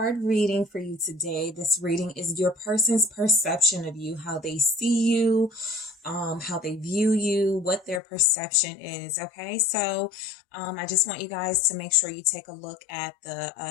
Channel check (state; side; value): drops out; right; at 8.0 s